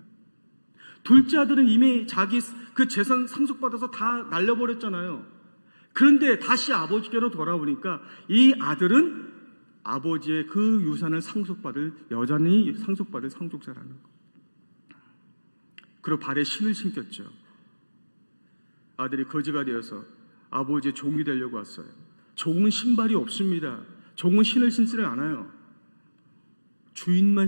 둘째 아들은 이미 자기 그 재산 상속받아서 다 날려버렸잖아요. 그런데 다시 아버지께로 돌아오니까 이 아들은 아버지의 그 유산을 여전히 상속받을 상속자라는 거. 그리고 발에 신을 신겼죠. 아들이 거지가 되어서 아버지의 종이 되려고 왔어요. 종은 신발이 없습니다. 종은 신을 신지를 않아요. 주인만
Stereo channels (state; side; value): inverted; both; correlation -1.00